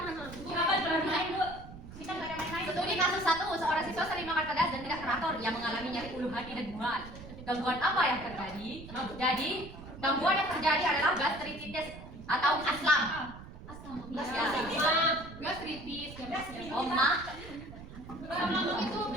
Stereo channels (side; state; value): right; noise; rumble, 14 dB below the sound